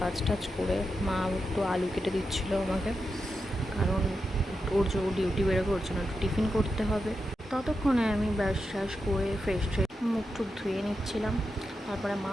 কাজ টাজ করে, মা একটু আলু কেটে দিচ্ছিলো আমাকে, কারণ ওর যে ডিউটি বেরোবে, ওর জন্য একটু টিফিন করতে হবে। ততক্ষণে আমি ব্রাশ ট্রাশ করে ফ্রেশ হয়ে মুখ টুক ধুয়ে নিচ্ছিলাম। তারপরে মা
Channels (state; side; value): normal; both; correlation 0.88